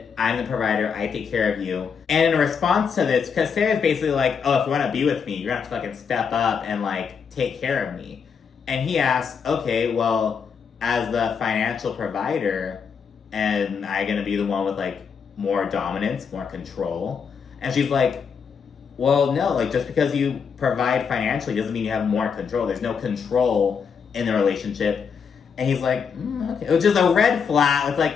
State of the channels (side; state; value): right; quieter; 6.4 dB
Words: I'm the provider. I take care of you. And in response to this, because Sarah's basically like, oh, if you want to be with me, you're going to have to fucking step up and, like, take care of me. And he asks, okay, well, as the financial provider, and I'm going to be the one with, like, more dominance, more control. And she's like, well, no, like, just because you provide financially doesn't mean you have more control. There's no control in the relationship. And he's like, okay. Which is a red flag. It's